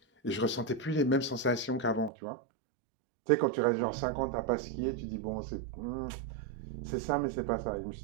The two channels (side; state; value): left; drops out; at 2.1 s